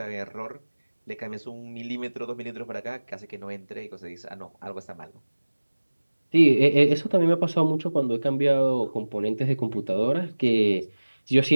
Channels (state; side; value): inverted; both; correlation -1.00